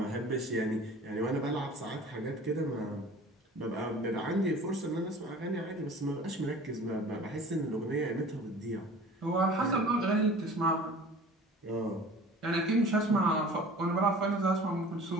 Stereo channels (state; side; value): normal; both; correlation 0.44